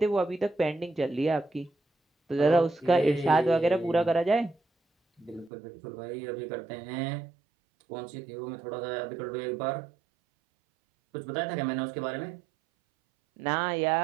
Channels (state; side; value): drops out; left; at 5.5 s